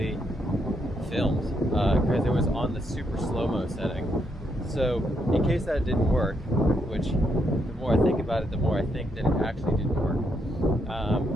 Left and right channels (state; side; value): normal; both; correlation 0.77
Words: filmed, because it was on the super slow-mo setting. So in case that didn't work, which the more I think about it, the more I think that it actually didn't work.